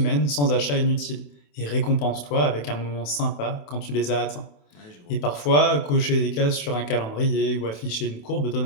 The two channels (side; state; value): right; late; 27 ms